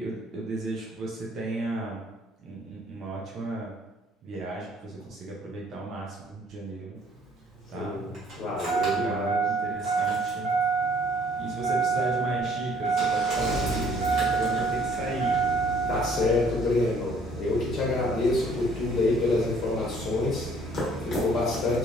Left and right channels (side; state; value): both; normal; correlation 0.59